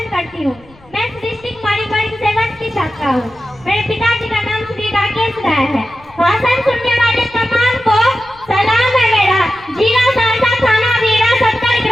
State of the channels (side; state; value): left; noise; rumble, 26 dB below the sound